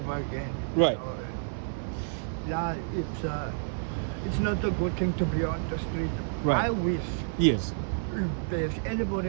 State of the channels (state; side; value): silent; left; 58 dB below the other